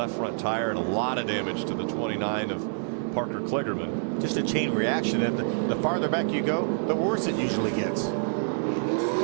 front tire and a lot of damage to the 29 of Parker Kligerman. Just a chain reaction, and the farther back you go, the worse it usually gets.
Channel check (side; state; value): left; silent; digital silence